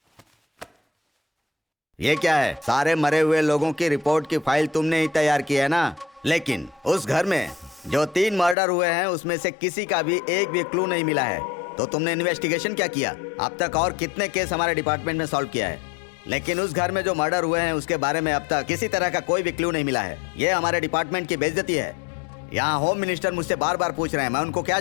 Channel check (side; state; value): right; drops out; at 8.6 s